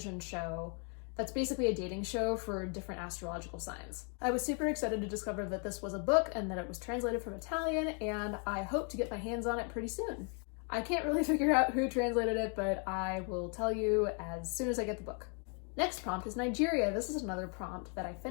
show that's basically a dating show for different astrological signs. I was super excited to discover that this was a book and that it was translated from Italian, and I hope to get my hands on it pretty soon. I can't really figure out who translated it, but I will tell you as soon as I get the book. Next prompt is Nigeria. This is another prompt that I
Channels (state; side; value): quieter; right; 39.7 dB